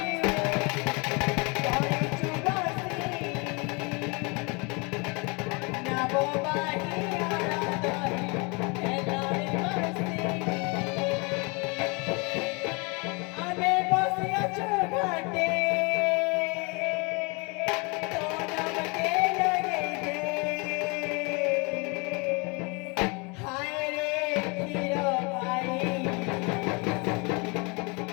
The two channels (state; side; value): quieter; right; 30.1 dB